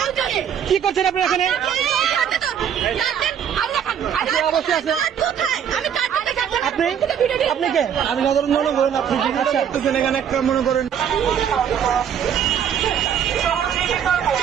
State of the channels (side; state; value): left; quieter; 8.6 dB